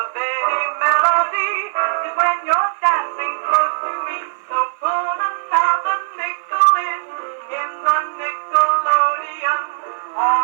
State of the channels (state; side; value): silent; left; 56 dB below the other